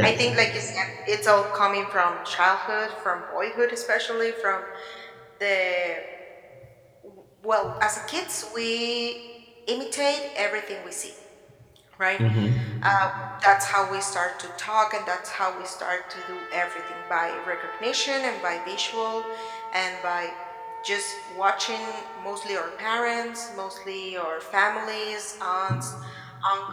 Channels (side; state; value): both; identical; correlation 1.00